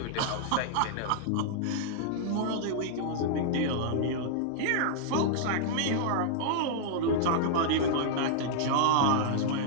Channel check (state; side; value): different; both; correlation -0.01